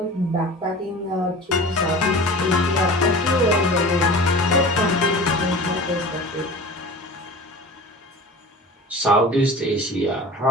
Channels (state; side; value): normal; both; correlation 0.38